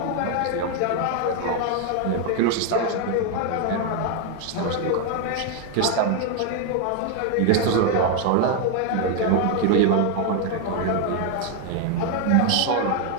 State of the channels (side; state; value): both; different; correlation 0.01